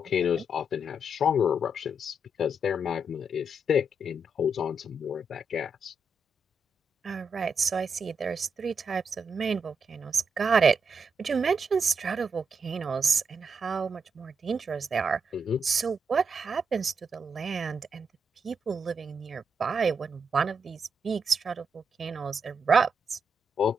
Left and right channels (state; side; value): normal; both; correlation 0.81